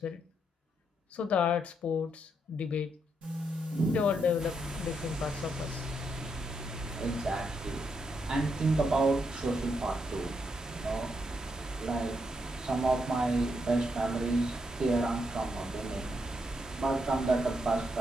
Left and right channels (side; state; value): both; normal; correlation 0.79